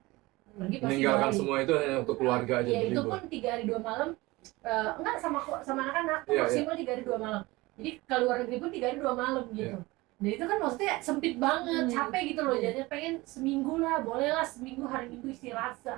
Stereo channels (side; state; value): left; quieter; 21.3 dB